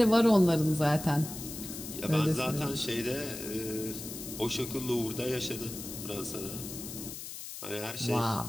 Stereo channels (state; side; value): noise; left; hiss, 10 dB below the sound